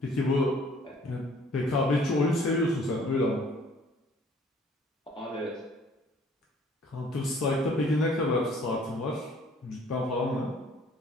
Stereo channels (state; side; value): normal; both; correlation 0.56